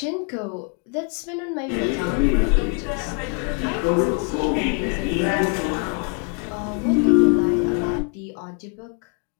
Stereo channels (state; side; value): quieter; right; 37.0 dB